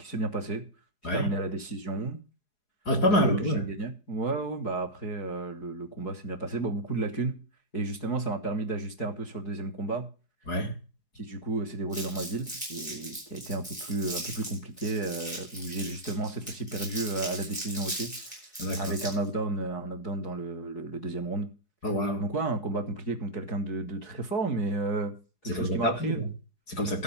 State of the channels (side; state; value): right; late; 4.8 ms